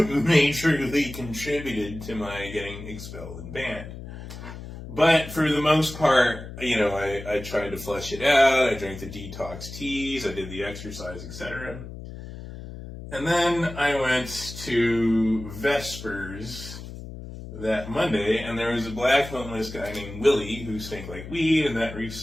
contributed to my getting expelled and banned. But for the most part, I tried to flush it out. I drank the detox teas. I did the exercise, etc. And then I went to Vespers that Monday, and there was a black homeless guy named Willie who stank like weed, and that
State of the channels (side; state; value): left; noise; hum, 12 dB below the sound